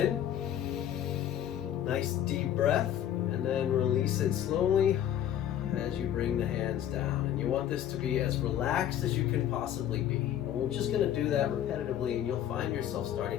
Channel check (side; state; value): right; quieter; 10.8 dB